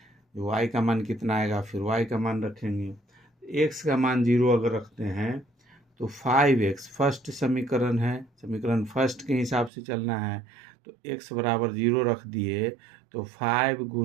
y का मान कितना आएगा, फिर y का मान रखेंगे। x का मान 0 अगर रखते हैं तो 5x फर्स्ट समीकरण है, समीकरण फर्स्ट के हिसाब से चलना है। तो x बराबर 0 रख दिए तो 5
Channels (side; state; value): left; drops out; at 9.7 s